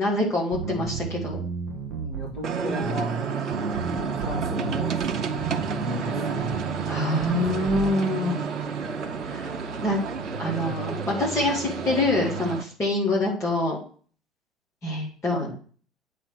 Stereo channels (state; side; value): normal; both; correlation 0.40